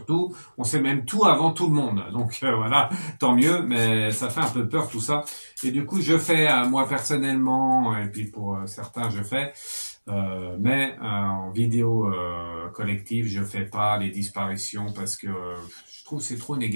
tout. On sait même tout avant tout le monde. Donc voilà, tant mieux, mais ça fait un peu peur tout ça. Et du coup, je fais, moi personnellement, et puis pour certains, je fais. Mais en vidéo collective, je fais pas les disparitions parce que je trouve que c'est trop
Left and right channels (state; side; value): inverted; both; correlation -1.00